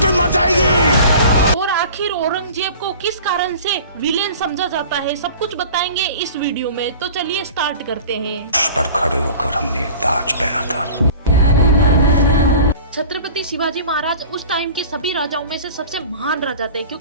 भी मर जाएगी। और आखिर औरंगजेब को किस कारण से विलेन समझा जाता है, सब कुछ बताएंगे इस वीडियो में। तो चलिए स्टार्ट करते हैं। पर खड़े होकर हमने ताज पहना था। छत्रपति शिवाजी महाराज उस टाइम के सभी राजाओं में से सबसे महान राजा थे,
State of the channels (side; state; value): both; inverted; correlation -0.41